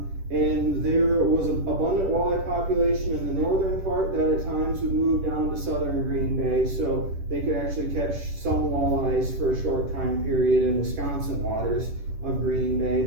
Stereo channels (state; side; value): late; left; 10 ms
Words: And there was an abundant walleye population in the northern part that at times would move down to southern Green Bay, so they could actually catch some walleyes for a short time period in Wisconsin waters of Green Bay,